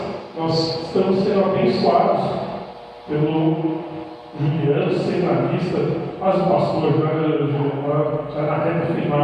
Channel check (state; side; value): identical; both; correlation 1.00